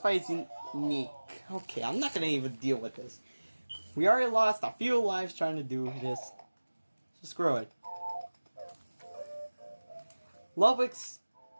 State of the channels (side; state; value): both; inverted; correlation -1.00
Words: fight is unique. Okay, I'm not gonna even deal with this. We already lost a few lives trying to do this. So screw it. Ludwig's